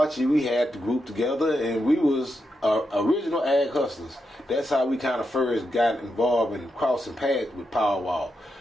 we had the group together, and we was original Ag Hustlers. That's how we kind of first got involved in crossing paths with Paul Wall.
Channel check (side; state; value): both; normal; correlation 0.85